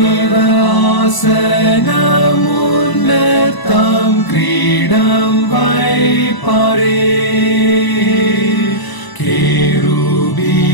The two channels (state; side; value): late; right; 1.0 ms